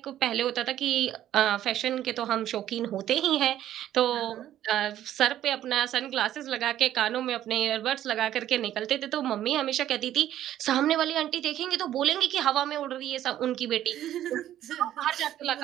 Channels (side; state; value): left; quieter; 12.2 dB